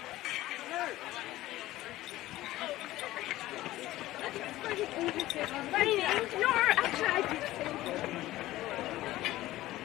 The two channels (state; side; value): quieter; right; 16.2 dB